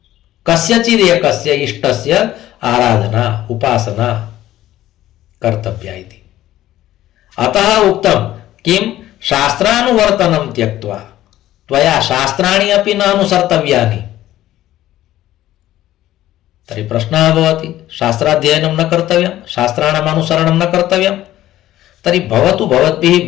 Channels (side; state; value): right; quieter; 14.1 dB